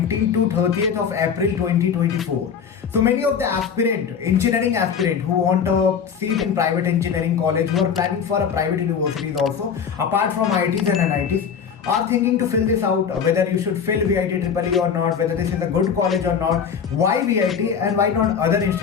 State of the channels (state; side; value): quieter; right; 7.0 dB